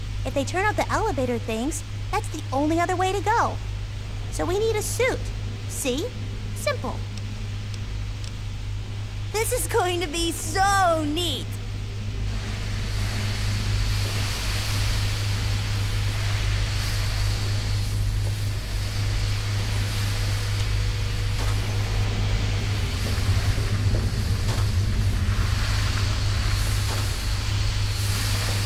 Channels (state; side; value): identical; both; correlation 1.00